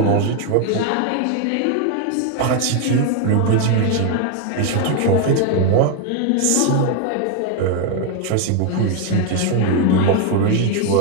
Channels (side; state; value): both; different; correlation 0.01